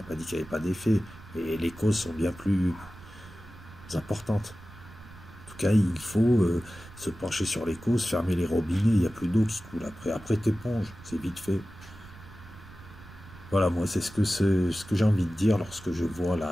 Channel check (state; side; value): noise; right; rumble, 18 dB below the sound